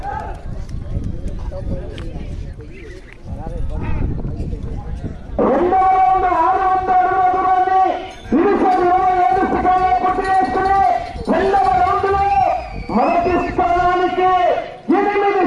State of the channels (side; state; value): both; identical; correlation 1.00